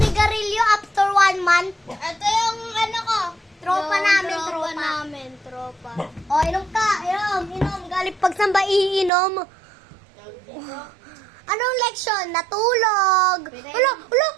after 1 month. Ito yung ano ko. Tropa namin, tropa. namin, tropa. O, inom ka. Inom. Galing pagsamba, iinom. Anong leksyon? Natulog. Wala.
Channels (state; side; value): drops out; left; at 9.1 s